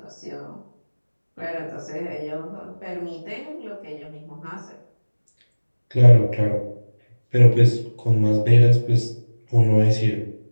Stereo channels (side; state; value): both; inverted; correlation -1.00